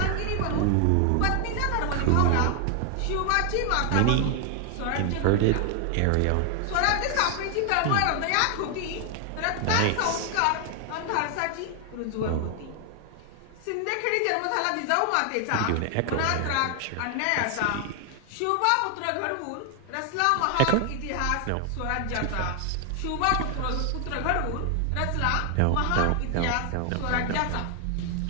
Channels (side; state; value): both; different; correlation 0.00